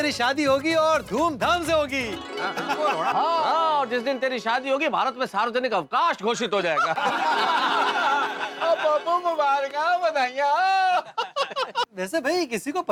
शादी होगी और धूमधाम से होगी। हाँ, और जिस दिन तेरी शादी होगी, भारत में सार्वजनिक अवकाश घोषित हो जाएगा। पप्पू मुबारक, बधाइयाँ। वैसे भाई, किसी को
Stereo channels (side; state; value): both; identical; correlation 1.00